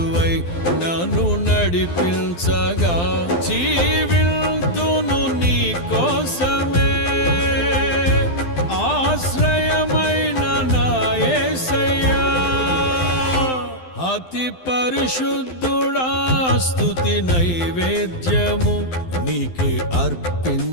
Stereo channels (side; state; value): right; late; 12 ms